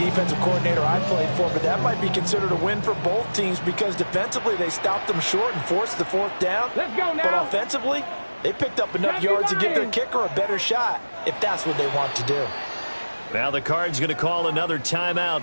coordinator I played for, but that might be considered a win for both teams because defensively they stopped them short and forced the 4th down. Let's go now. But offensively, they picked up enough yards to give their kicker a better shot if that's what they want to do. Now the Cards going to call another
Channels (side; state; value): both; inverted; correlation -1.00